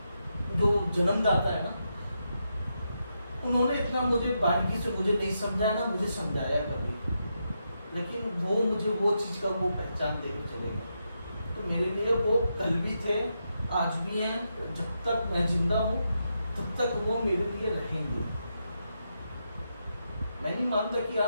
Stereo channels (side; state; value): both; inverted; correlation -0.84